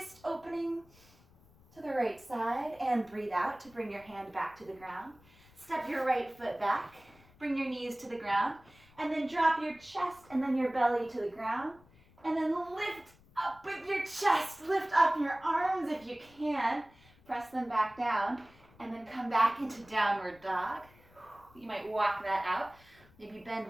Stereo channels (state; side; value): noise; left; rumble, 27 dB below the sound